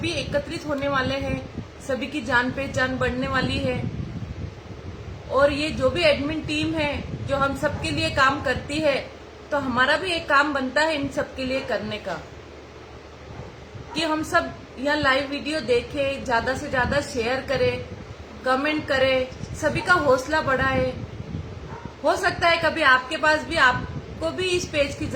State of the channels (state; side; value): identical; both; correlation 1.00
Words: एकत्रित होने वाले हैं, सभी की जान पहचान बढ़ने वाली है। और ये जो भी एडमिन टीम है जो हम सबके लिए काम करती है, तो हमारा भी एक काम बनता है इन सबके लिए करने का कि हम सब यहाँ लाइव वीडियो देखें, ज्यादा से ज्यादा शेयर करें, कमेंट करें, सभी का हौसला बढ़ाए। हो सकता है कभी आपके पास भी, आपको भी इस पेज की